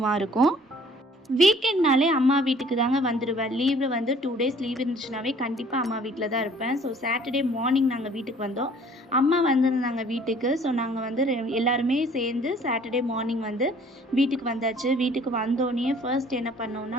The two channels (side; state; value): both; normal; correlation 0.55